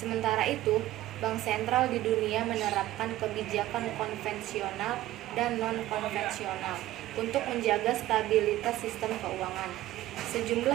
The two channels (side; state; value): left; quieter; 15.4 dB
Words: itu, bank sentral di dunia menerapkan kebijakan konvensional dan non-konvensional untuk menjaga stabilitas sistem keuangan.